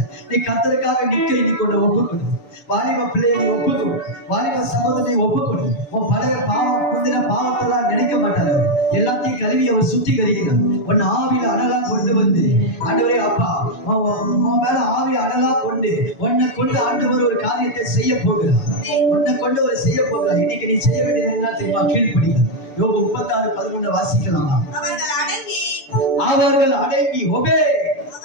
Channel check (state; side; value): late; right; 6.9 ms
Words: நீ கர்த்தருக்காக நிற்க இன்னைக்கு உன்னை ஒப்புக்கொடு. வாலிப பிள்ளையை நீ ஒப்புக்கொடு. வாலிப சகோதரனை ஒப்புக்கொடு. உன் பழைய பாவம் முந்தின பாவத்தெல்லாம் நினைக்க மாட்டார். எல்லாத்தையும் கழுவி அவர் சுத்திகரிக்கிறார். உன் ஆவியில அனலா கொண்டு வந்து ஆண்டவரே அப்பா உன் மேல ஆவி அனலா கொண்டு உன்னை கொண்டு ஆண்டவர் ஒரு காரியத்தை செய்ய போகிறார். உன்னை கொண்டு ஒரு செய்ய போகிறார். இன்னைக்கு நீ செய்ய வேண்டியது என்ன தெரியுமா? கீழ்ப்படிங்க. யோபு 36:11 வாசிக்கலாமா? அவர்கள் அடங்கி ஒபே